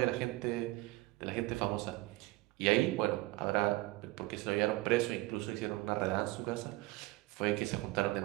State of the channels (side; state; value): left; quieter; 20.4 dB